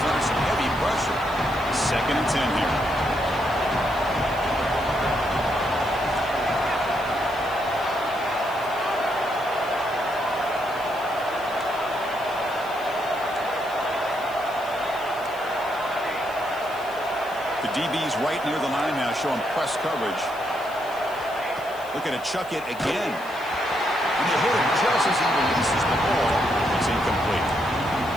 under some heavy pressure. 2nd and 10 here. The DB's right near the line now, showing press coverage. Looking to chuck it again. And they hit him just as he releases the ball. It's incomplete.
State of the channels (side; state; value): left; noise; hiss, 21 dB below the sound